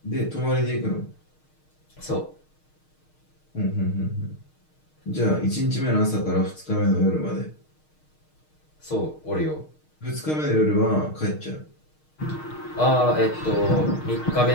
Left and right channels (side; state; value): right; late; 6.5 ms